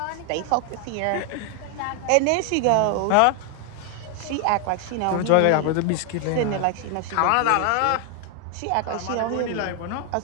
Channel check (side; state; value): both; different; correlation 0.00